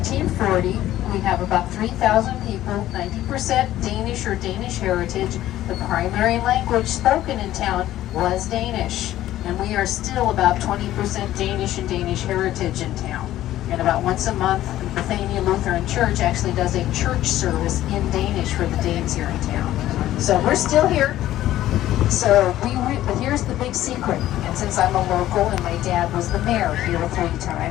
we have about 3,000 people, 90% Danish or Danish heritage. The primary language spoken in town was Danish. And we are still about 20% Danish and Danish heritage in town. And about once a month, Bethania Lutheran Church actually does a church service in Danish for the Danes here in town. So we're still here. So but here's the big secret. And since I'm a local and my dad was the mayor here 3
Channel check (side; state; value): right; quieter; 13.8 dB